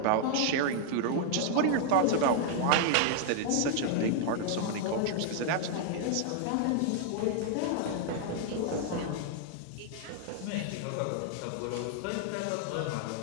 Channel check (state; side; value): different; both; correlation -0.01